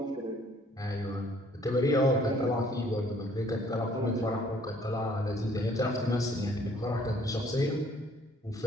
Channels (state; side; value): normal; both; correlation 0.60